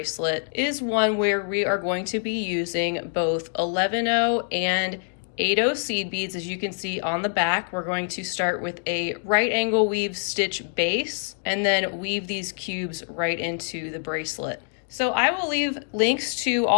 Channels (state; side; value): silent; right; 62 dB below the other